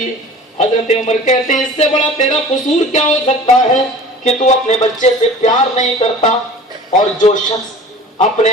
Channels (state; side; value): normal; both; correlation 0.42